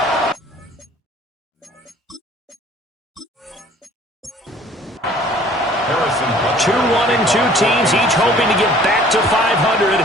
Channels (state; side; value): normal; both; correlation 0.53